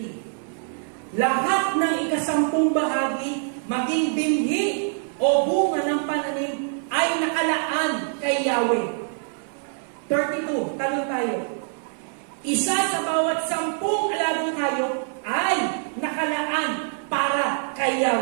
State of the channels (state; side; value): silent; left; 57 dB below the other